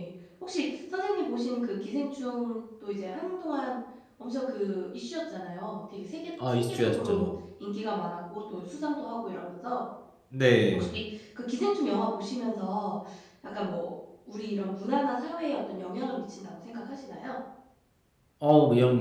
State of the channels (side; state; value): both; identical; correlation 1.00